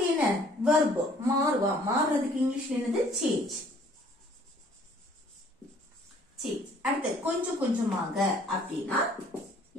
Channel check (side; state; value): both; normal; correlation 0.58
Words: என்ன verb மாறுறதுக்கு இங்கிலீஷ்ல என்னது change அடுத்து கொஞ்சம் கொஞ்சமாக அப்படின்னா